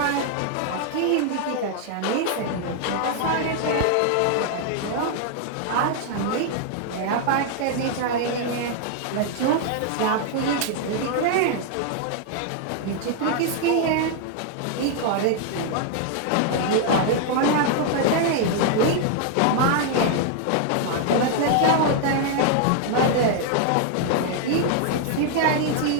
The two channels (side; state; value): both; different; correlation 0.00